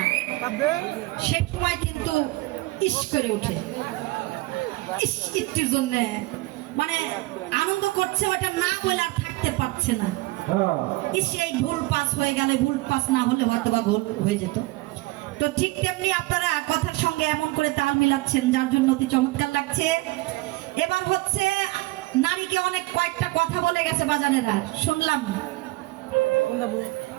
সে সময় কিন্তু ইস করে উঠে, ইস একটির জন্য মানে আনন্দ করছে, ওটা না বলে আর থাকতে পারছে না। ইস এই ভুল পাস হয়ে গেলে, ভুল পাস না হলে হয়তো বা গোল হয়ে যেত। তো ঠিক তেমনি আপনারা কথার সঙ্গে এমন করে তাল মিলাচ্ছেন, যার জন্য অতি চমৎকার লাগছে। এবার হচ্ছে নারীকে অনেক কয়েকটা কথা বলে গেছে বাজানেরা, শুনলাম।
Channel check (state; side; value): quieter; left; 20.9 dB